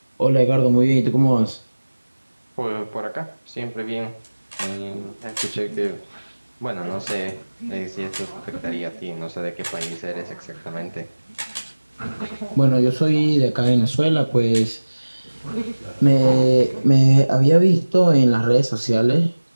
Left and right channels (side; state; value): both; inverted; correlation -1.00